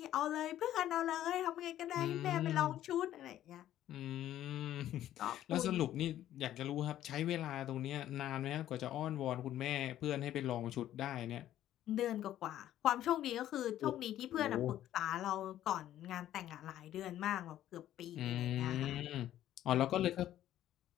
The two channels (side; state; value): right; quieter; 12.5 dB